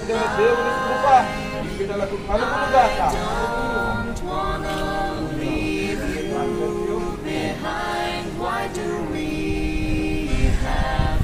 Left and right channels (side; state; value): both; identical; correlation 1.00